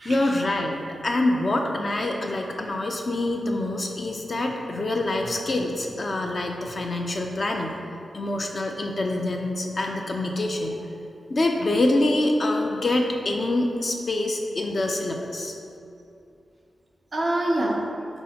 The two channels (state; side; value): normal; both; correlation 0.91